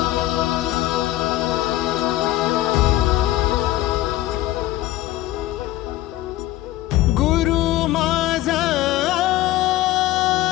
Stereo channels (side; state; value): right; quieter; 15.5 dB